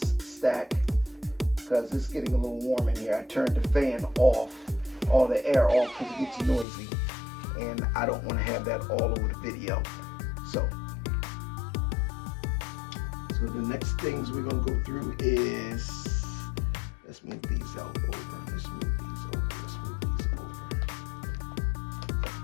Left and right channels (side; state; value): right; drops out; at 6.7 s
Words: stack, because it's getting a little warm in here. I turned the fan off, all the air off, because it gets noisy. And I don't want to have that all over the video. So the next things we're going to go through is, let's move these out over. Let's move these over. Let's move these over.